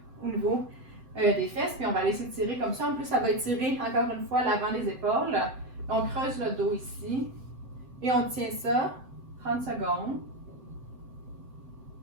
au niveau des fesses, puis on va aller s'étirer comme ça. En plus, ça va étirer encore une fois l'avant des épaules. On creuse le dos ici et on tient ça 30 secondes.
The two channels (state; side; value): late; left; 7.8 ms